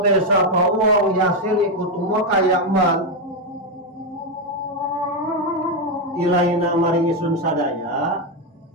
sapa wong yasil ikut umur kaya man ilaina maring isun sadaya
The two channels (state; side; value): normal; both; correlation 0.06